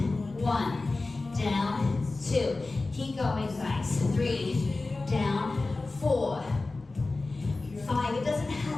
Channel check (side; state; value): right; quieter; 3.4 dB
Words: 1, down, 2. Keep going, guys. 3, down, 4, 5. It doesn't